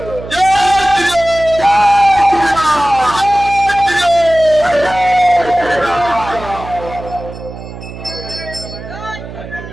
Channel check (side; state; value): right; noise; hum, 13 dB below the sound